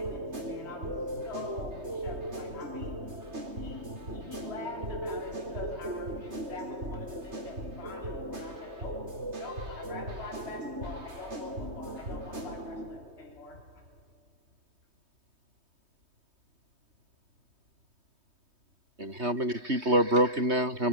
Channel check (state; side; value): late; left; 3.2 ms